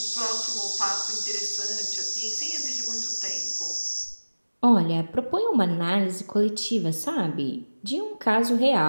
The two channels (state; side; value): inverted; both; correlation -1.00